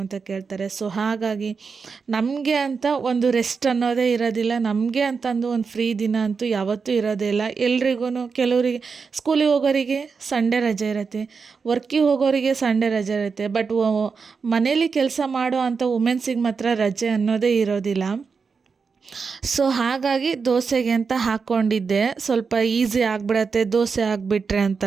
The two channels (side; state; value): left; quieter; 5.3 dB